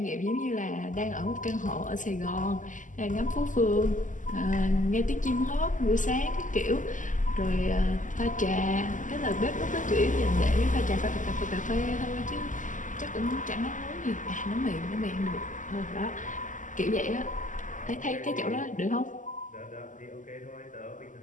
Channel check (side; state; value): right; late; 0.37 ms